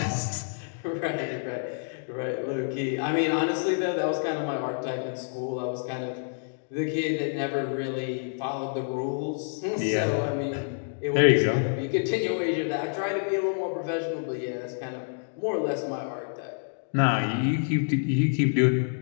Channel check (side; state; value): right; silent; digital silence